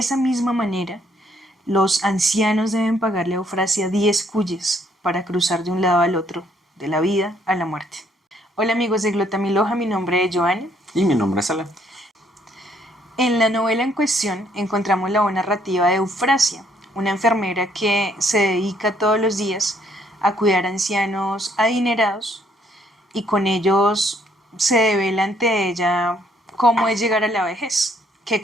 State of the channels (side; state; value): both; normal; correlation 0.67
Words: misma manera los ancianos deben pagarle a Eufrasia 10 cuyes para cruzar de un lado al otro, de la vida a la muerte. Hola amigos de Glotamiloja, mi nombre es Joana. Y mi nombre es Alan. En la novela en cuestión encontramos la voz narrativa de Eufrasia, una enfermera que se dedica todos los días a cuidar a ancianos adinerados y con ellos se devela ante ella cómo es llegar a la vejez, qué